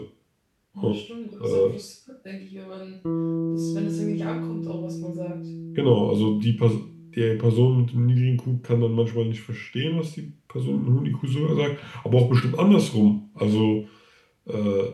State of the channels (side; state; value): both; identical; correlation 1.00